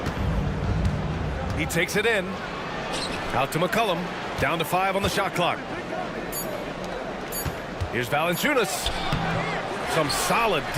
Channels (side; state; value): both; identical; correlation 1.00